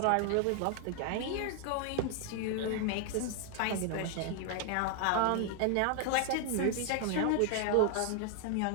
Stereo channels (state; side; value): different; both; correlation 0.01